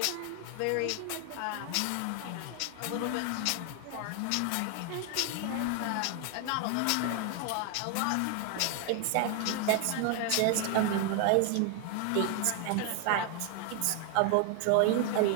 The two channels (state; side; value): different; both; correlation 0.00